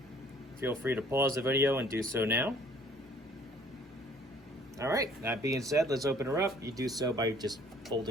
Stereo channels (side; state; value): both; normal; correlation 0.56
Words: feel free to pause the video and do so now. All right, that being said, let's open her up. You do so by just